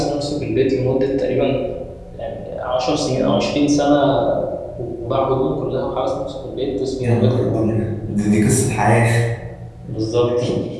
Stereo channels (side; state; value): both; identical; correlation 1.00